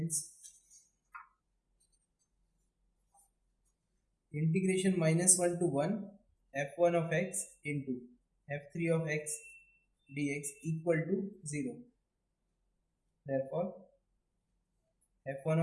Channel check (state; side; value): identical; both; correlation 1.00